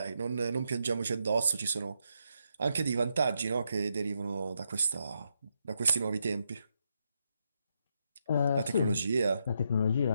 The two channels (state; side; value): inverted; both; correlation -0.80